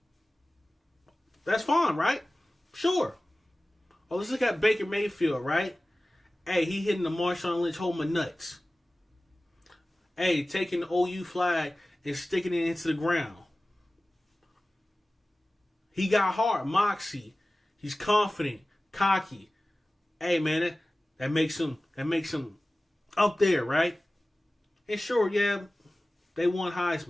That's fine, right? Sure. Oh, let's look at Baker Mayfield, right? Hey, he hitting the Marshawn Lynch hold my nuts. Hey, taking the OU flag and sticking it into the ground. He got heart, moxie. He's confident, cocky. Hey, man, that makes him up there, right? And sure, yeah, they won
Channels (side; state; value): both; normal; correlation 0.97